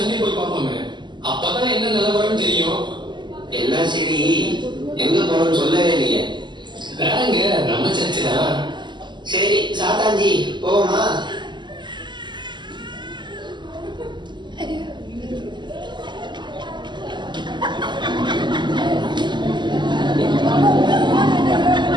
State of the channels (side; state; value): left; late; 0.22 ms